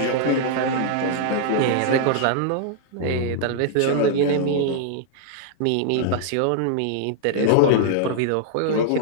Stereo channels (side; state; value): both; different; correlation -0.01